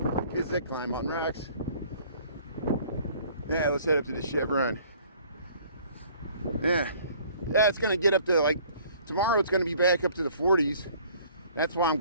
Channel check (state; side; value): inverted; both; correlation -0.55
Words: Kids that climb on rocks. Yeah, let's head up to the Chevron. Yeah, it's going to get up to, like, tomorrow it's going to be back up to the 40s. That's why I'm